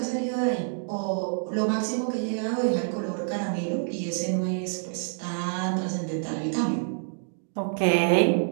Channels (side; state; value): left; silent; digital silence